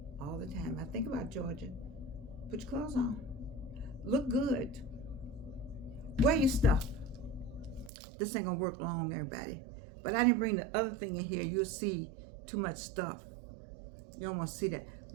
all the time. I think about Georgia. Put your clothes on. Look good. Wear your stuff. This ain't gonna work long, everybody. But I didn't bring the other thing in here. You'll see too much stuff. You don't want to see that.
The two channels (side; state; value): left; drops out; at 7.9 s